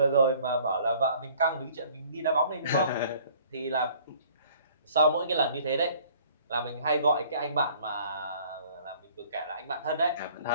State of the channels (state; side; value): inverted; both; correlation -0.55